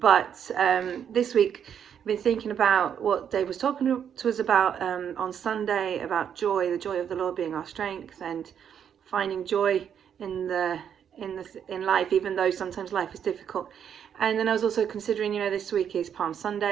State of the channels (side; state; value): left; quieter; 8.4 dB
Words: this week I've been thinking about what Dave was talking to us about on Sunday, about joy, the joy of the Lord being our strength, and finding joy in life, even though sometimes life is difficult. And then I was also considering, this week is Palm